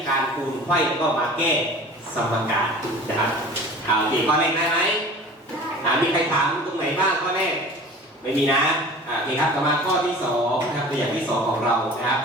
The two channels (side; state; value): both; normal; correlation 0.41